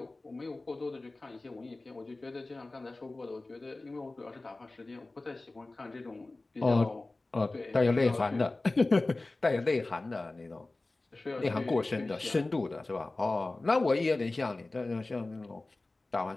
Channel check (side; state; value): right; quieter; 3.1 dB